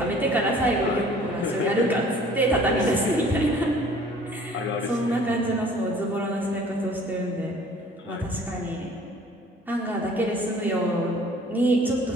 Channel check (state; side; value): normal; both; correlation 0.52